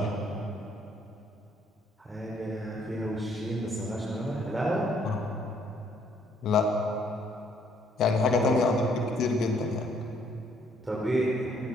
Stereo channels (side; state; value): both; normal; correlation 0.66